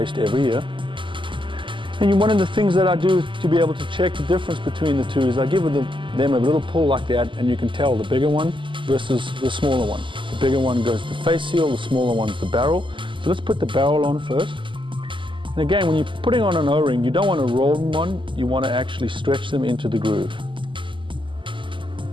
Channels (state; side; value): late; left; 0.24 ms